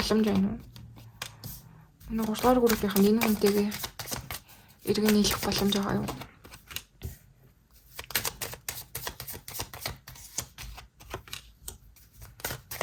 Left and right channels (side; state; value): both; identical; correlation 1.00